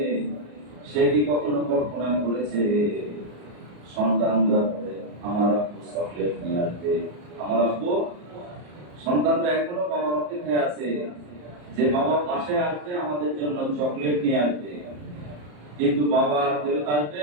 সে কি কখনো কল্পনা করেছে সন্তানরা বলে আমার আব্বু চকলেট নিয়ে আসবে, আমার আব্বু, সন্তানরা এখনো বাবার অপেক্ষায় আছে যে বাবা পাশে আসবে আমাদের জন্য চকলেট নিয়ে আসবে, কিন্তু বাবা আর ফেরত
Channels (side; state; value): left; late; 34 ms